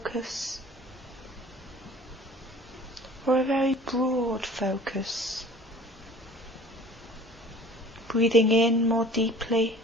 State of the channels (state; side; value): normal; both; correlation 0.47